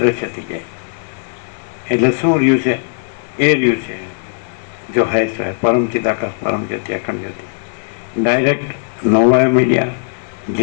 થઈ જાય. એટલે શું રહ્યું છે? એ રહ્યું છે જો હૈ સો હૈ, પરમ ચિદાકાશ, પરમ જ્યોતિ, અખંડ જ્યોતિ. ડાયરેક્ટ, નો વાયો મીડિયા,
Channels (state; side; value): silent; right; digital silence